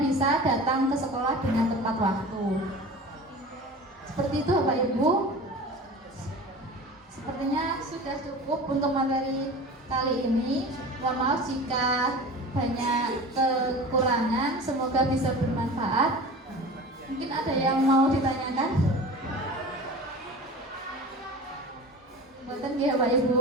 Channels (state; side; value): normal; both; correlation 0.36